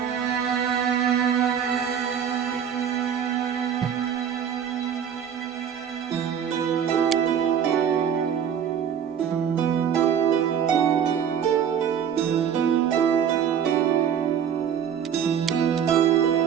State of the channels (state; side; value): quieter; left; 8.3 dB